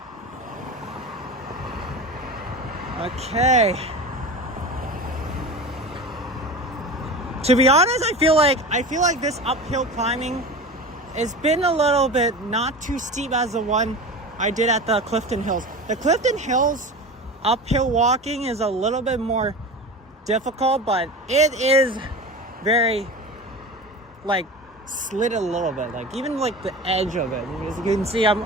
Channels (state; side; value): normal; both; correlation 0.30